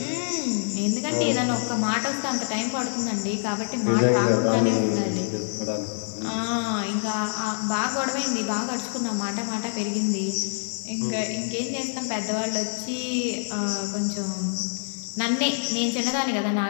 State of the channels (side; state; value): right; silent; digital silence